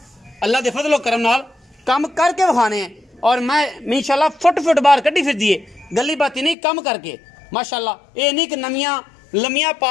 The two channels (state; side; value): drops out; right; at 6.6 s